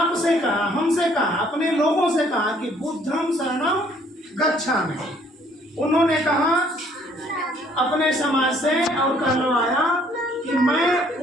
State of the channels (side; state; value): both; normal; correlation 0.62